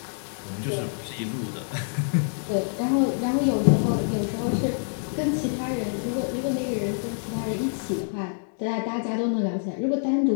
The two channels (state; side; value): silent; right; digital silence